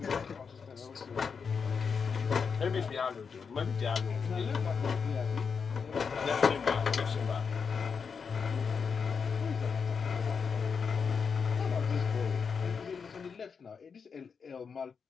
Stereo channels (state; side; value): quieter; right; 5.9 dB